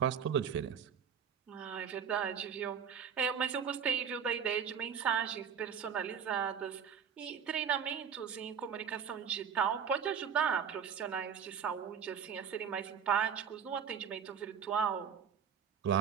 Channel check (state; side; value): quieter; left; 7.5 dB